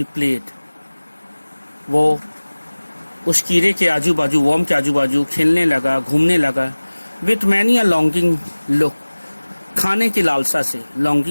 played. वो उस कीड़े के आजू बाजू, वर्म के आजू बाजू खेलने लगा, घूमने लगा। With many a longing look, खाने की लालसा से,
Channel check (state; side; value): inverted; both; correlation -1.00